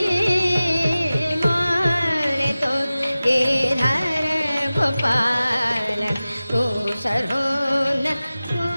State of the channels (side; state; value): both; inverted; correlation -0.97